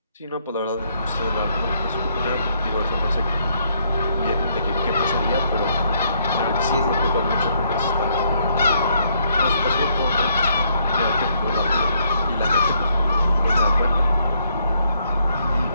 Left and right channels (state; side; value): inverted; both; correlation -0.71